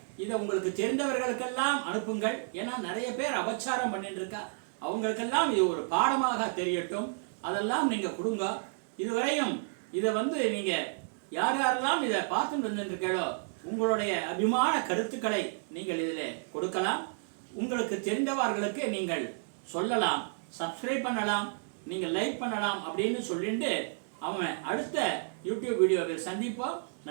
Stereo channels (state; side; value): silent; left; digital silence